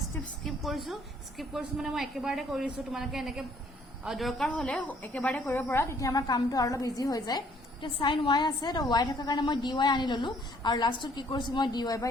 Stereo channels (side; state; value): both; normal; correlation 0.62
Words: স্টেপ স্কিপ কৰিছো মানে মই একেবাৰে কৰিছো তোমালোকে এনেকে দৰকাৰ হলে একেবাৰে কৰিব পৰা তেতিয়া আমাৰ কামটো আৰু অলপ ইজি হৈ যায় তে sin y আছে তো y থকা কাৰণে মই dy আনি ললো আৰু লাষ্টত কি কৰিছো মই dy by